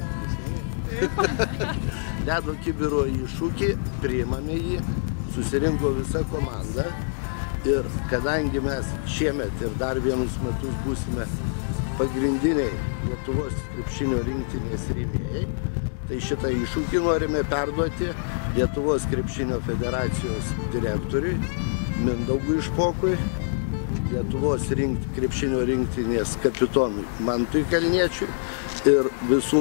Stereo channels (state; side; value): silent; right; digital silence